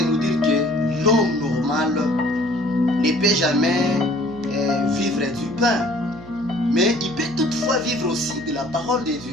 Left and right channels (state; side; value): noise; right; hum, 19 dB below the sound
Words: nous dire que l'homme normal ne peut jamais vivre du pain. Mais il peut toutefois vivre aussi de la parole de